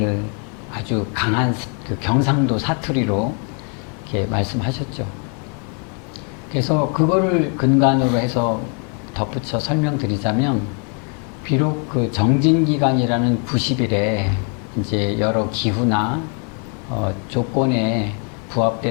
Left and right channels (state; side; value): quieter; right; 39.9 dB